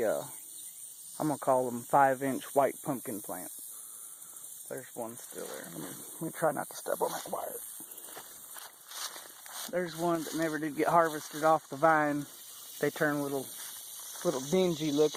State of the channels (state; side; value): identical; both; correlation 1.00